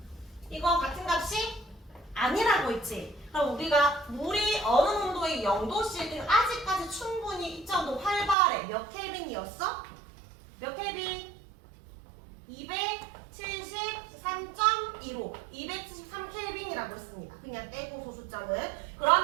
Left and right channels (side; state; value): left; drops out; at 8.3 s